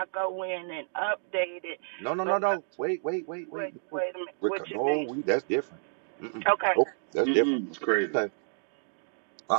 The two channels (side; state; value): left; silent; digital silence